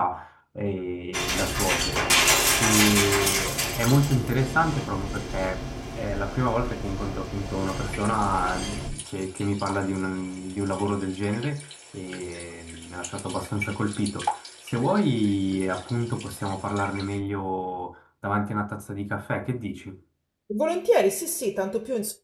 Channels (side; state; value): both; identical; correlation 1.00